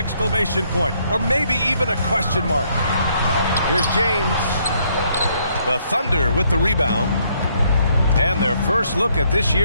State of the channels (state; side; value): inverted; both; correlation -0.70